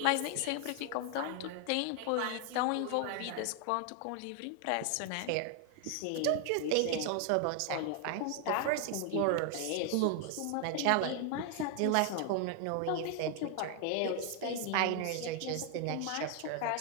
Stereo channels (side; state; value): both; different; correlation 0.00